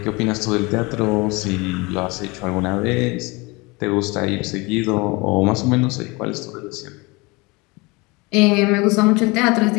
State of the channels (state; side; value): quieter; right; 25.5 dB